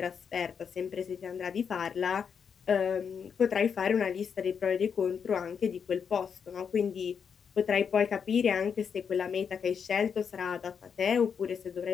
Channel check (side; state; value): right; quieter; 6.8 dB